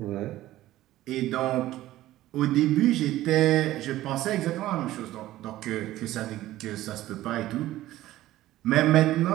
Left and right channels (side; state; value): left; quieter; 15.2 dB